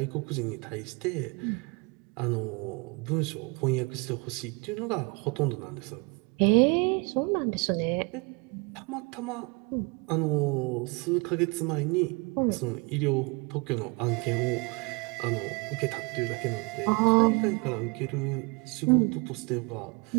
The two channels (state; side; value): quieter; left; 29.6 dB